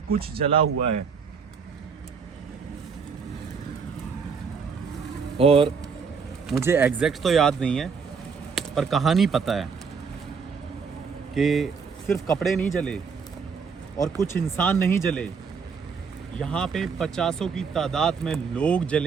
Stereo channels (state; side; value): quieter; left; 5.7 dB